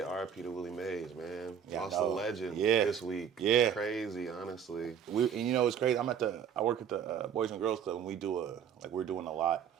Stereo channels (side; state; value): left; quieter; 8.1 dB